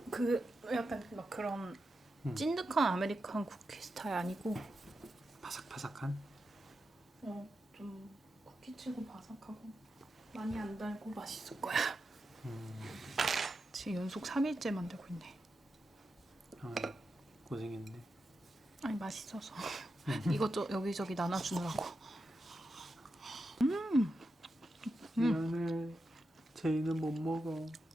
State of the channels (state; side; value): normal; both; correlation 0.88